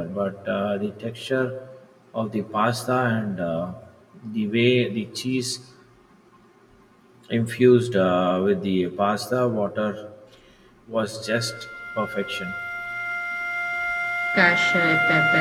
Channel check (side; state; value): both; identical; correlation 1.00